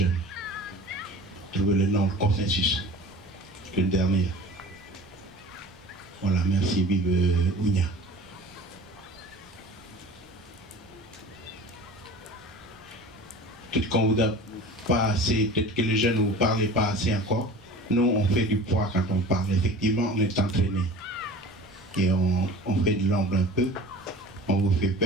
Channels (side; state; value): both; normal; correlation 0.40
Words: Trouver le nom, le consensus. Le dernier. Voilà, merci, vive Ounia. peut-être qu'on vous a pas assez, peut-être que les jeunes ne vous parlez pas assez encore. Nous, on fait du poids quand on parle. Effectivement, on est entraîné. Et on fait de l'ombre un peu. On vous fait